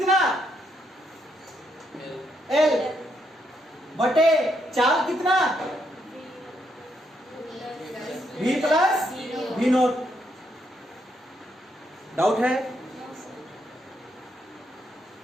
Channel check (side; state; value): both; normal; correlation 0.76